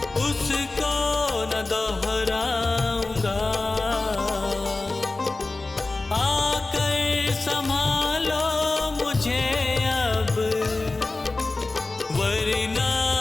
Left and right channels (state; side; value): quieter; right; 3.3 dB